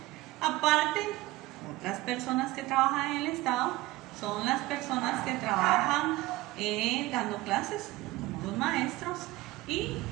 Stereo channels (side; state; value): left; quieter; 18.8 dB